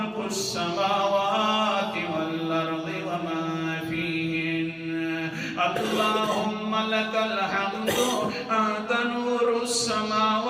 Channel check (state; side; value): identical; both; correlation 1.00